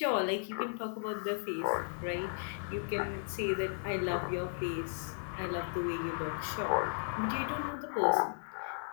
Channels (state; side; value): silent; right; 54 dB below the other